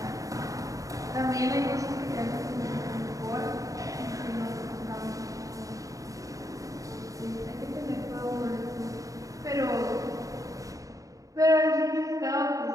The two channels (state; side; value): late; left; 0.16 ms